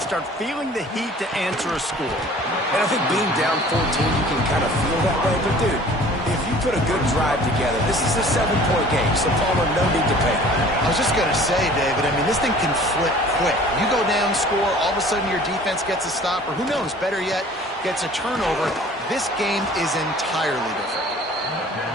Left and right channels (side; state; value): both; normal; correlation 0.48